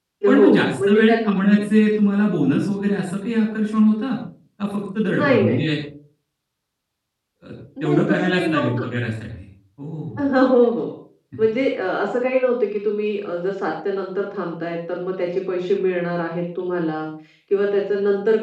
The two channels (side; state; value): both; identical; correlation 1.00